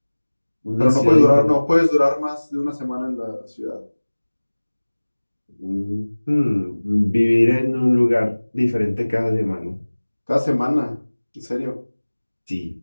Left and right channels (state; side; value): inverted; both; correlation -1.00